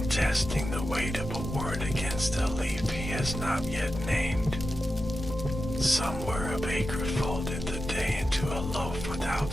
testing the weight of a word against a leaf he has not yet named. Somewhere a baker folded the day into a loaf without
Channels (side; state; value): both; normal; correlation 0.91